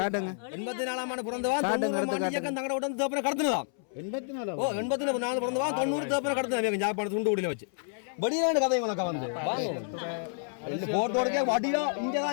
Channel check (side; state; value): right; silent; 58 dB below the other